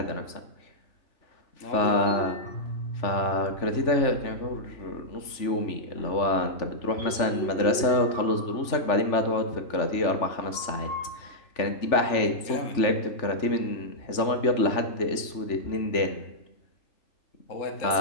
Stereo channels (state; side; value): late; right; 3.4 ms